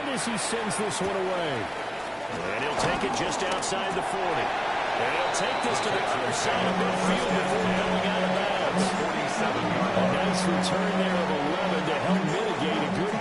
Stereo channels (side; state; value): both; identical; correlation 1.00